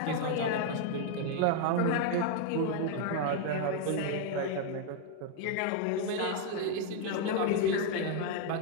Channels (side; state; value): both; different; correlation 0.00